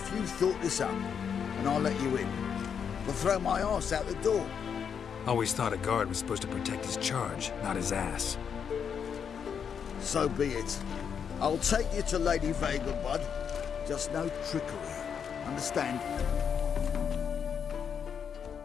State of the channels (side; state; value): right; quieter; 7.3 dB